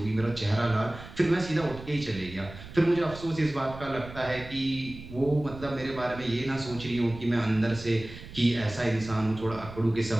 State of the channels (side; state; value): right; noise; rumble, 15 dB below the sound